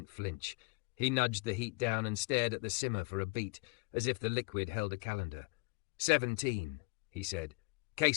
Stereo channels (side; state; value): right; quieter; 29.4 dB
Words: flinch. He nudged the heat down and stared at the simmer for a beat, as if the liquid held a calendar. 17, he said.